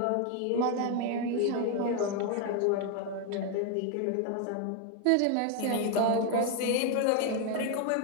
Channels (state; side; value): different; both; correlation 0.01